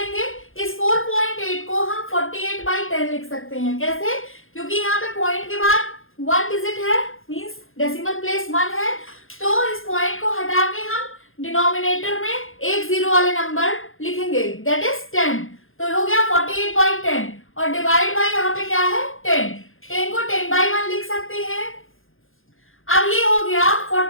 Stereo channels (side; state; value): right; late; 0.60 ms